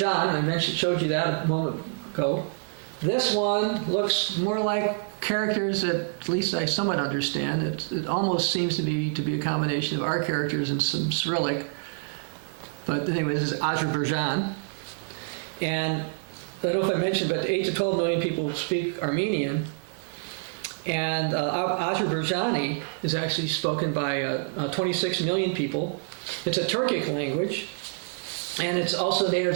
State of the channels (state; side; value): silent; left; 58 dB below the other